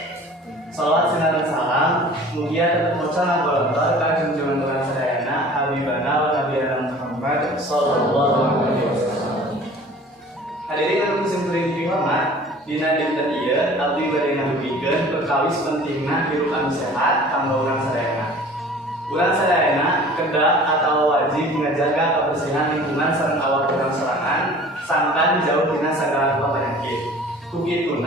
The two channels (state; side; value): normal; both; correlation 0.46